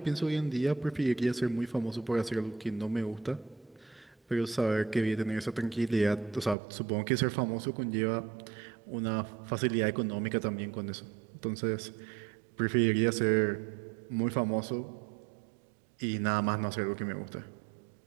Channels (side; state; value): left; drops out; at 6.6 s